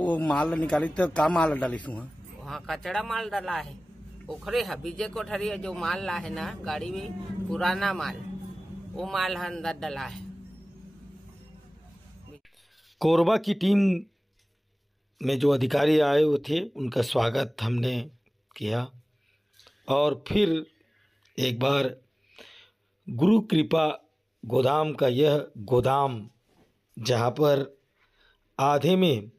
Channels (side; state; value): both; normal; correlation 0.98